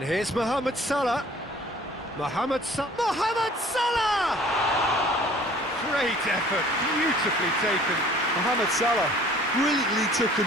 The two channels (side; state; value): both; normal; correlation 0.52